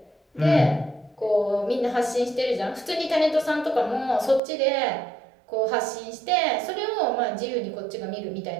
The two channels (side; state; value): left; drops out; at 4.4 s